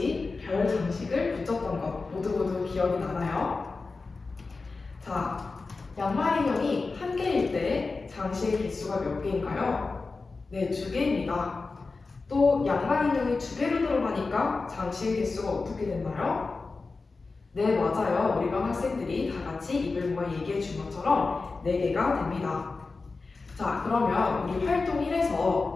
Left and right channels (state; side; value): quieter; right; 4.0 dB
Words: 별 장식을 붙였던 것 모두 기억이 나나요? 자, 양말 인형이 1개일 때 장식의 개수가 몇 개인가요? 네, 2개입니다. 또 양말 인형이 2개로 들어가니까 장식의 개수가 어떻게 됐나요? 네, 맞아요. 우리 반 학생들이 다 같이 입을 모아 얘기해 준 것처럼 4개가 됩니다. 자, 그러면 우리 활동